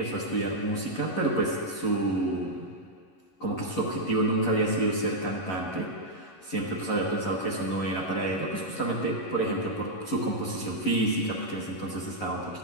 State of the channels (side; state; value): right; late; 11 ms